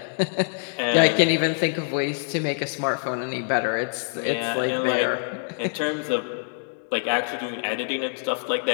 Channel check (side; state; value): right; silent; digital silence